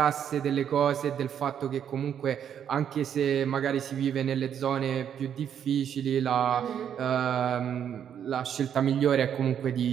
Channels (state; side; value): quieter; left; 8.9 dB